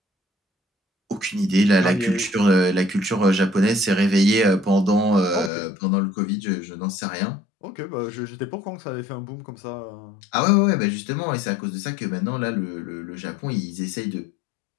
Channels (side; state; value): right; drops out; at 5.5 s